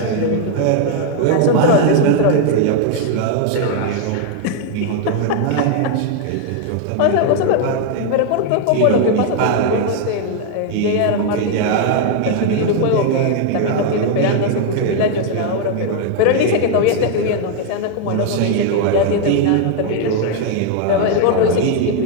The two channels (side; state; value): both; different; correlation 0.00